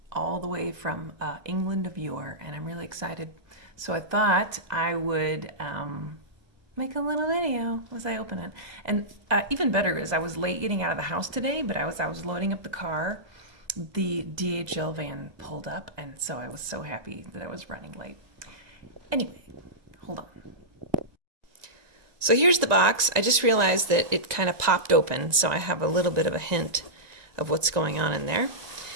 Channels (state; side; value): late; left; 1.9 ms